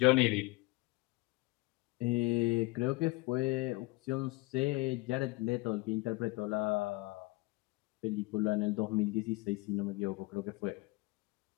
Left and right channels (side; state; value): right; quieter; 22.1 dB